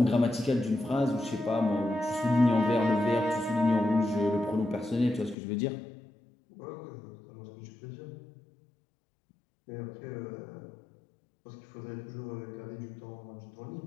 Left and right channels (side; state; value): right; drops out; at 5.4 s